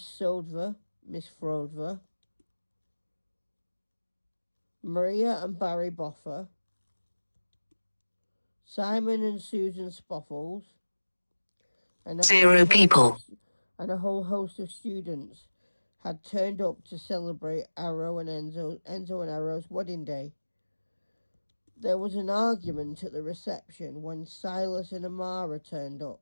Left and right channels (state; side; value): inverted; both; correlation -1.00